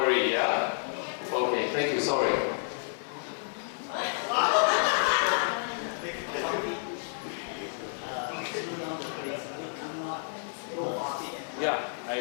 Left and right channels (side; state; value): right; silent; digital silence